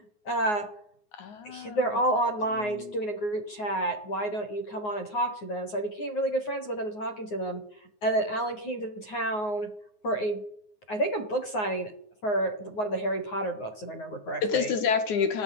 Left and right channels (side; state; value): right; late; 9.5 ms